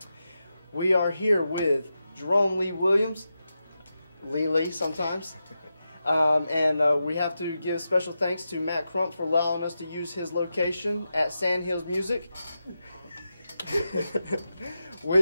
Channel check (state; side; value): inverted; both; correlation -0.90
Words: We are here with Jerome Lee Williams, Lili sometimes, and we have to give special thanks to Matt Crump for allowing us to use his location at Sandhills Music,